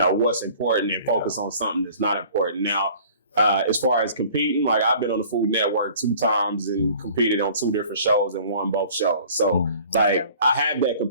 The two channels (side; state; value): both; inverted; correlation -0.49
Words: important and focus on something that's not important. Now, as far as competing, like I've been on the Food Network 2 times and competed on 2 different shows and won both shows. So like I have that